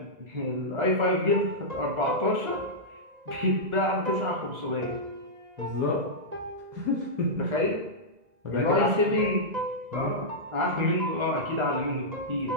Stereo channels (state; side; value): late; left; 2.0 ms